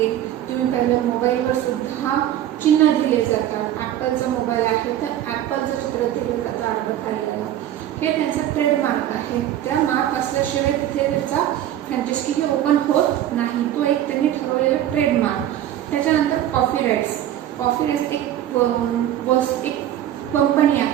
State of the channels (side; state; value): left; quieter; 11.9 dB